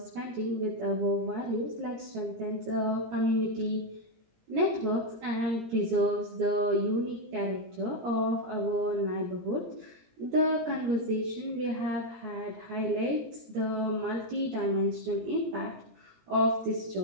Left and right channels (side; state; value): left; late; 17 ms